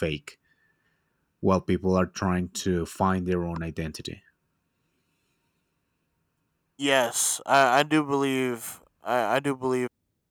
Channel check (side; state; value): both; identical; correlation 1.00